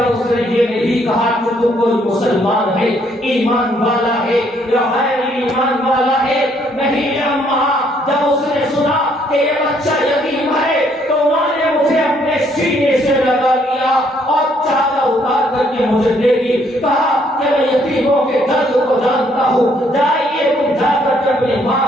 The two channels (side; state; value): both; normal; correlation 0.68